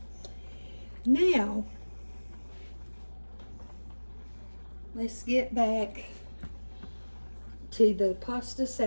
Now, let's get back to the pasta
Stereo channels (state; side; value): inverted; both; correlation -1.00